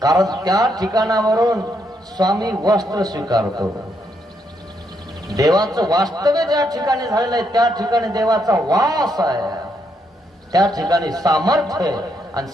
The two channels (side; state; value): both; normal; correlation 0.77